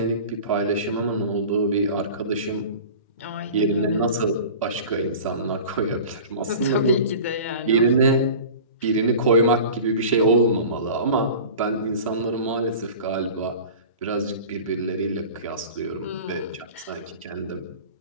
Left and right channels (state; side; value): inverted; both; correlation -0.38